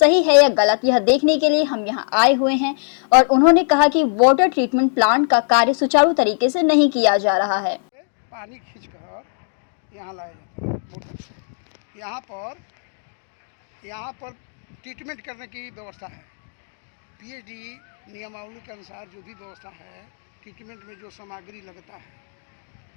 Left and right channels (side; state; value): right; silent; digital silence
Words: है या गलत, यह देखने के लिए हम यहां आए हुए हैं। और उन्होंने कहा कि वाटर ट्रीटमेंट प्लांट का कार्य सुचारू तरीके से नहीं किया जा रहा है। पानी खींचकर यहाँ लाया जाता है मोटर से। यहाँ पर ट्रीटमेंट करने की व्यवस्था है। पीएचडी नियमावली के अनुसार जो भी व्यवस्था है, ट्रीटमेंट में जो सामग्री लगता है